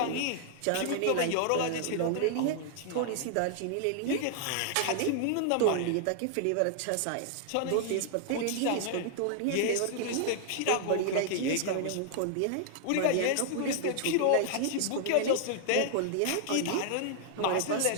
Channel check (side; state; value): both; different; correlation -0.01